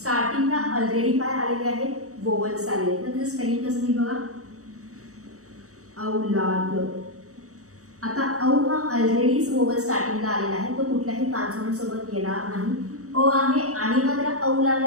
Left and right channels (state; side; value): late; left; 0.65 ms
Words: ऑलरेडी काय आलेले आहेत, वोवल्स आलेले आहेत, तर त्याचं स्पेलिंग कसं मी बघा, औलाद. आता औ हा ऑलरेडीच वोवल स्टार्टिंगला आलेला आहे, तो कुठल्याही कॉन्सोनंट सोबत येणार नाही. अ आहे आणि मग त्याला औ